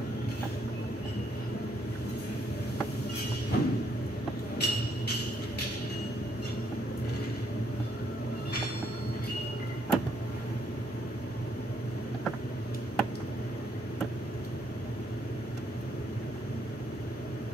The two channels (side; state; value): both; normal; correlation 0.72